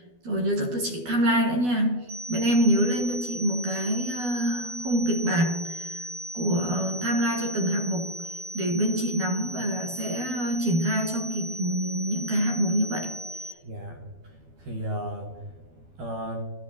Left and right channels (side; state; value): left; late; 12 ms